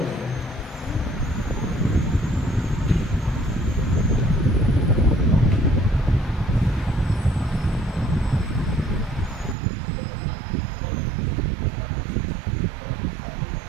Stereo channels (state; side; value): drops out; left; at 9.6 s